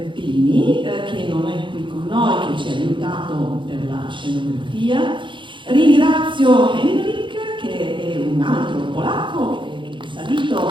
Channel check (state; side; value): late; left; 0.24 ms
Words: Pini, che non è qui con noi, che ci ha aiutato per la scenografia. Ringrazio Henrik, che è un altro polacco, che è salito